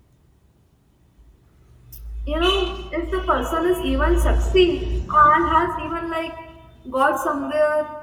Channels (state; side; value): identical; both; correlation 1.00